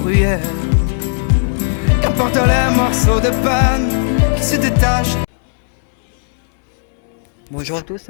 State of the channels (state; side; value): silent; right; 70 dB below the other